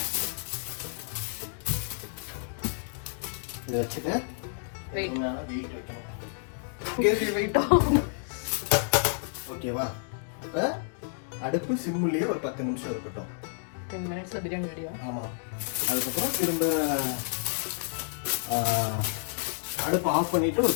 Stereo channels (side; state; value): right; silent; digital silence